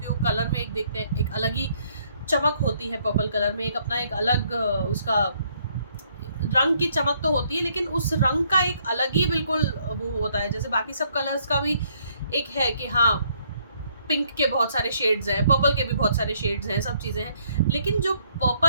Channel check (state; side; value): inverted; both; correlation -0.68